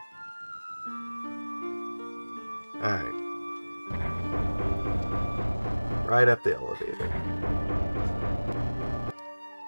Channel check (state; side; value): inverted; both; correlation -1.00